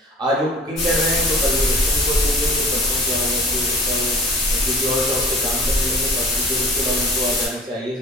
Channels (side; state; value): both; normal; correlation 0.43